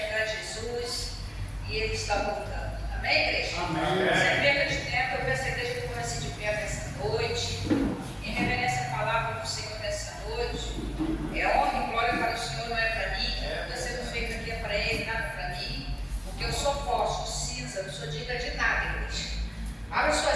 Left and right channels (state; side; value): identical; both; correlation 1.00